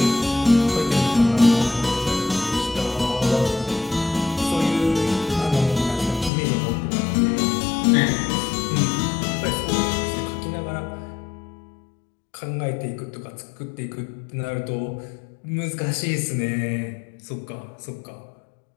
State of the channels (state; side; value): drops out; right; at 6.3 s